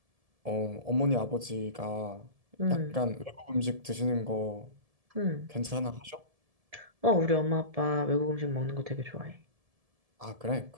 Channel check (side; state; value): left; late; 1.7 ms